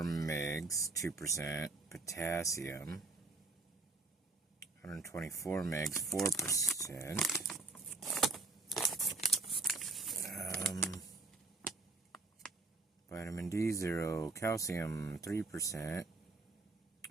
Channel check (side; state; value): left; quieter; 3.5 dB